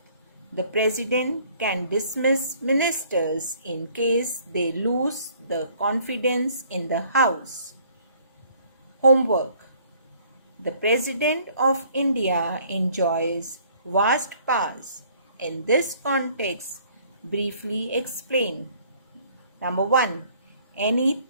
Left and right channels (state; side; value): inverted; both; correlation -0.59